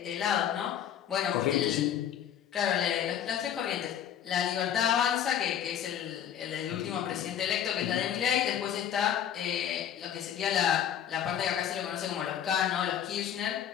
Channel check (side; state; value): right; quieter; 9.7 dB